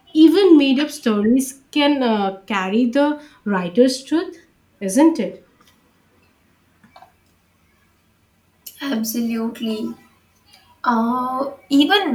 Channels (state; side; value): identical; both; correlation 1.00